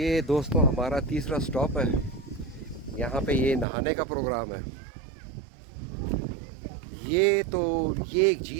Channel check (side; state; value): left; drops out; at 3.7 s